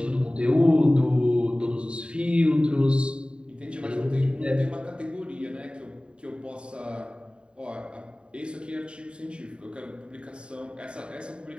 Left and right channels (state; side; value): late; left; 0.053 ms